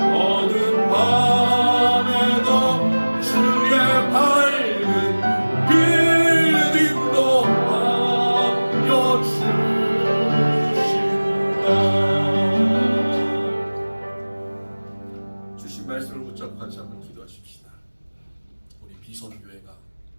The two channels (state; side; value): inverted; both; correlation -1.00